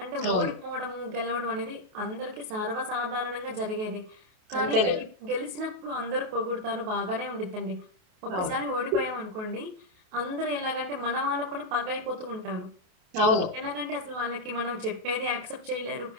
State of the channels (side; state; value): left; late; 28 ms